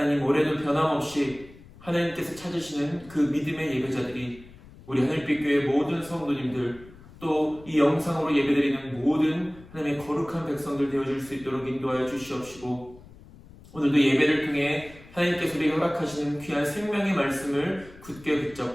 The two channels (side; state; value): left; noise; rumble, 21 dB below the sound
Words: 올해도 변함없이 하나님께서 찾으시는 그 믿음의 예배자들이 우리 하늘빛 교회 모든 성도님들, 또 이 영상으로 예배드리는 모든 하나님의 거룩한 백성들 되어줄 수 있도록 인도하여 주시옵시고, 오늘도 예배를 통해 하나님께서 우리에게 허락하시는 귀한 생명의 말씀을 굳게